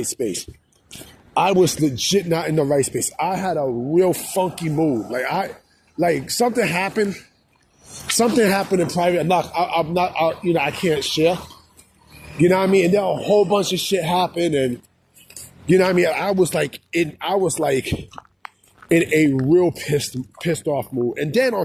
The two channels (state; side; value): identical; both; correlation 1.00